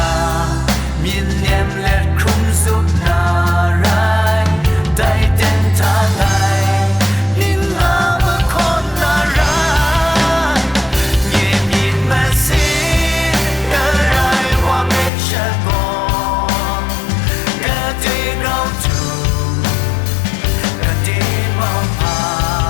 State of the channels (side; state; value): right; drops out; at 15.1 s